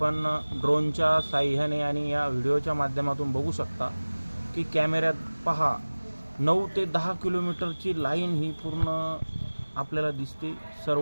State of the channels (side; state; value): both; inverted; correlation -1.00